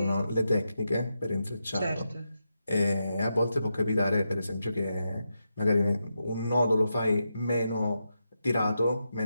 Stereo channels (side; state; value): both; inverted; correlation -0.86